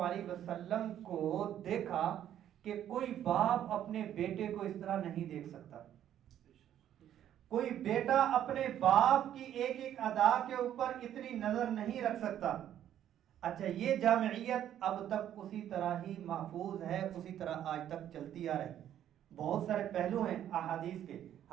علیہ وسلم کو دیکھا کہ کوئی باپ اپنے بیٹے کو اس طرح نہیں دیکھ سکتا، کوئی بیٹا اپنے باپ کی ایک ایک ادا کے اوپر اتنی نظر نہیں رکھ سکتا۔ اچھا، یہ جامعیت اب تک اسی طرح ہی محفوظ ہے، اسی طرح آج تک چلتی آ رہی۔ بہت سارے پہلو ہیں احادیث کے،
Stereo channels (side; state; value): left; quieter; 10.9 dB